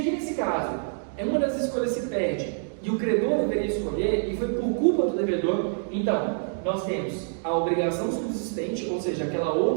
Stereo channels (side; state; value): left; silent; digital silence